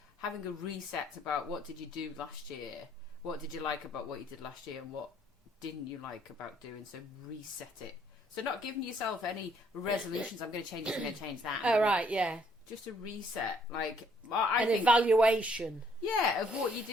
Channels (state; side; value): normal; both; correlation 0.65